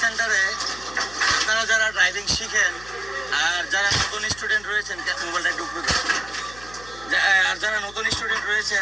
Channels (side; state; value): left; noise; hum, 19 dB below the sound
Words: সেন্টারে আপনারা যারা ড্রাইভিং শিখেন আর যারা নতুন স্টুডেন্ট রয়েছেন, মোবাইলটা একটু উপরে ধরুন। আর যারা নতুন স্টুডেন্ট